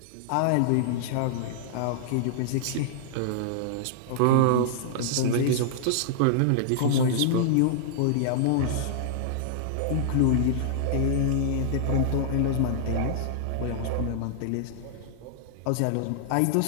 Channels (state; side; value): different; both; correlation -0.01